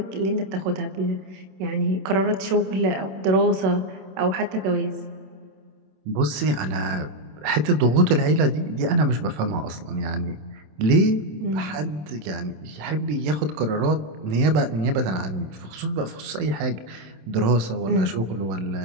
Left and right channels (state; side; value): late; left; 27 ms